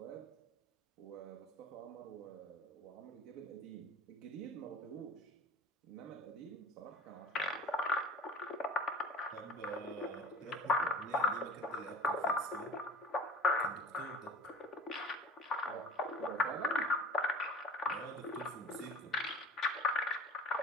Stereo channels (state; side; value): normal; both; correlation 0.41